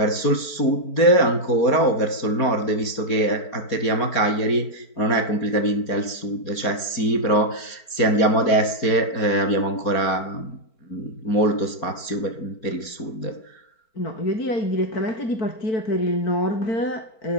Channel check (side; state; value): right; late; 4.5 ms